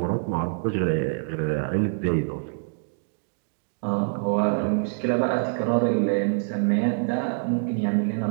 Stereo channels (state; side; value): silent; left; digital silence